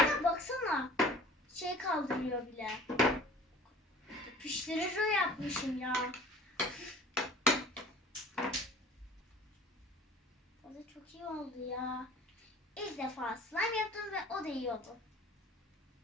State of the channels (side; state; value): both; normal; correlation 0.46